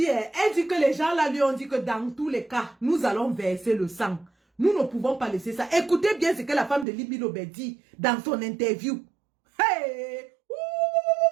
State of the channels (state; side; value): drops out; left; at 6.9 s